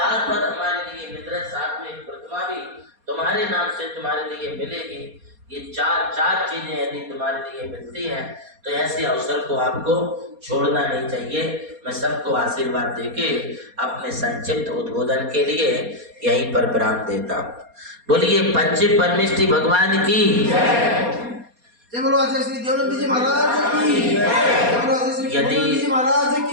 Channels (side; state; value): left; late; 4.2 ms